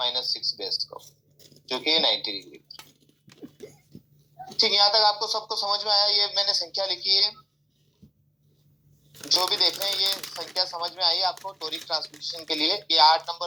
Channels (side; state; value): both; normal; correlation 0.95